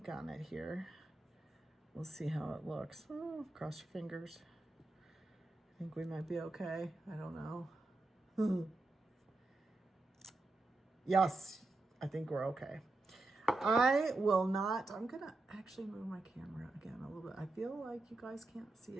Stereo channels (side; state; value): left; quieter; 3.1 dB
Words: on it here. We'll see how it looks. Oh, cross your fingers. I think we might be okay. I don't know. Yes, I think we're okay. I will not, I'm gonna actually move my camera again a little bit. I feel like you guys can't see